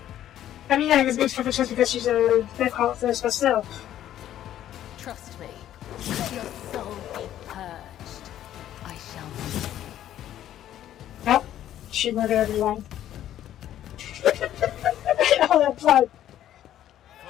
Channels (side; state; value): right; quieter; 11.8 dB